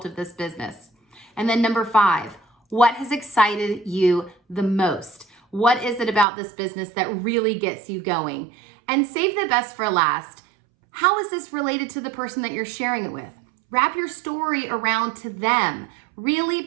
of this business? And then number five, what has excited you the most? What is it about this business that really gets you going? And save the best for last. How is this related to the person that you're sharing it with? Wrap your story around to them. Really,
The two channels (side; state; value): left; drops out; at 6.2 s